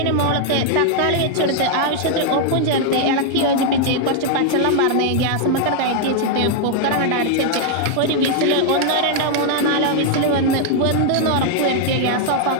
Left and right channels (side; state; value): both; different; correlation 0.00